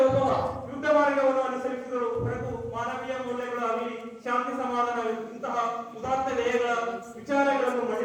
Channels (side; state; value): both; identical; correlation 1.00